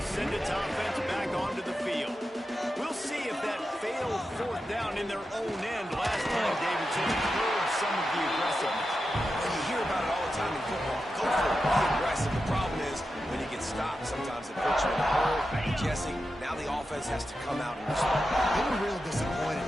send its offense back onto the field. We'll see if that failed fourth down in their own end last time, Davidson, curbed some of the aggressiveness. And you hear about it all the time in football. Go for it, be aggressive. The problem is when you get stopped, sometimes it puts you in a hole. Jesse, now the offense has to come out and respond. They were real disappointed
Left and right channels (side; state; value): both; normal; correlation 0.90